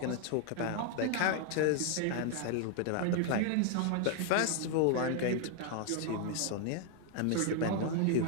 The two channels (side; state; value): both; different; correlation 0.00